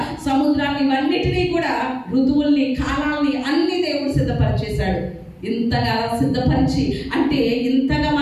సముద్రాన్ని, ఇవన్నిటినీ కూడా, ఋతువుల్ని, కాలాల్ని అన్ని దేవుడు సిద్ధపరిచేశాడు. ఇంతగా సిద్ధపరిచి, అంటే ఇంతగా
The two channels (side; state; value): both; identical; correlation 1.00